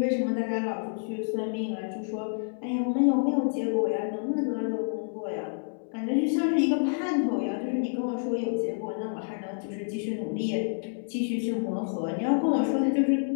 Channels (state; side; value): silent; right; 59 dB below the other